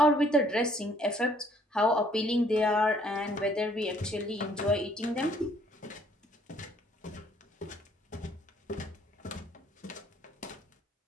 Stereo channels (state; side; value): normal; both; correlation 0.62